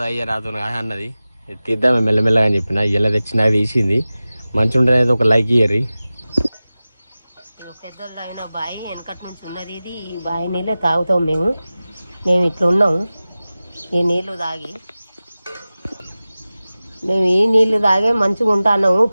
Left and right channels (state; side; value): inverted; both; correlation -0.97